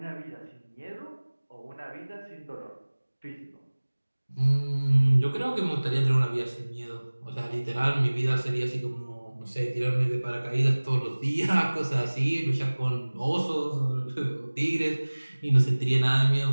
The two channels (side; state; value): both; inverted; correlation -1.00